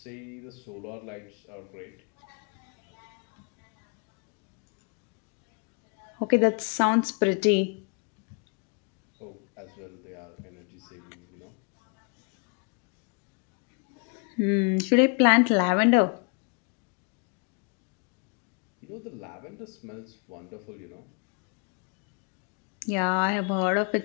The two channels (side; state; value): right; quieter; 38.4 dB